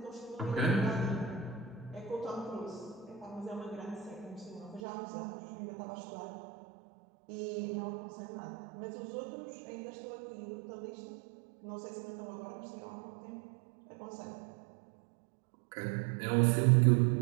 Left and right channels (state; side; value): drops out; left; at 4.8 s